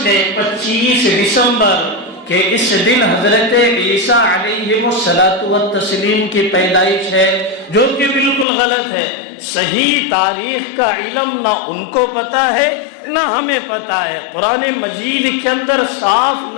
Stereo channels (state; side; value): drops out; right; at 8.5 s